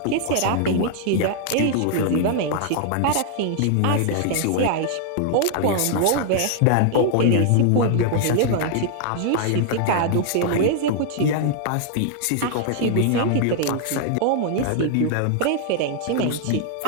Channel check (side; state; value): both; different; correlation 0.00